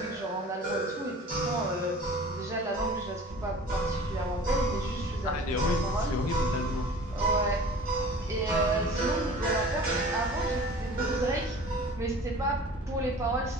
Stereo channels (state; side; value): normal; both; correlation 0.43